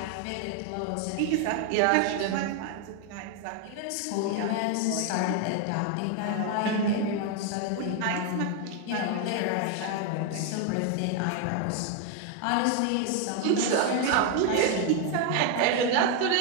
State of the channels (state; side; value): different; both; correlation 0.01